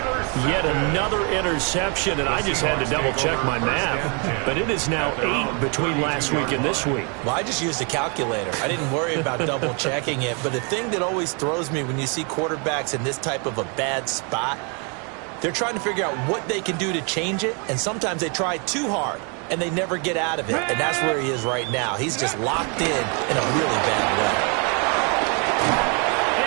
Yet another interception, and I just had to double-check my math. But it is now 8 between last week and this week. Well, I just used a calculator. I didn't worry about double-checking it. But the thing that always throws me when you see quarterbacks in this type of a bad spot, they're trying to figure out what they can do to change it, and sometimes they try too hard, and they never get out of it. And that's where he is right now. He's just locked in a really bad way.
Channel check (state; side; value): quieter; left; 35.6 dB